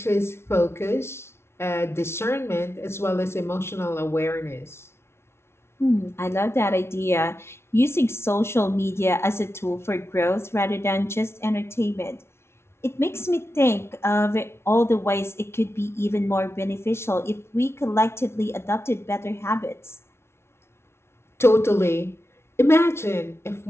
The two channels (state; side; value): late; right; 0.12 ms